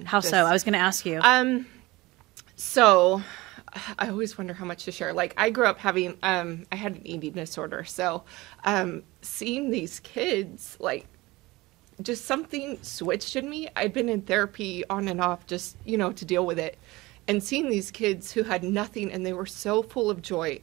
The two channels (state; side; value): quieter; left; 20.8 dB